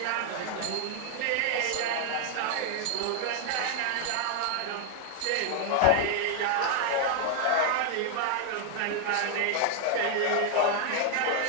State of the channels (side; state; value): both; different; correlation 0.00